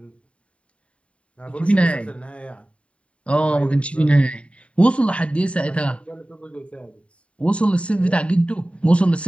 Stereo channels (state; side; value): late; right; 0.062 ms